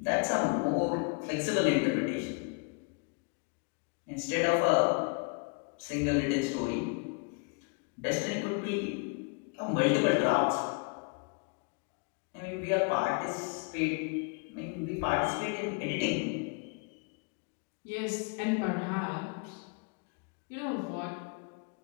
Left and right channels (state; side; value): quieter; right; 34.7 dB